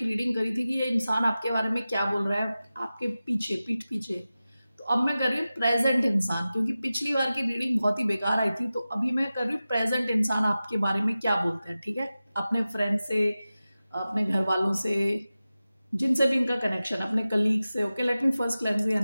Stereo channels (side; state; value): both; inverted; correlation -0.95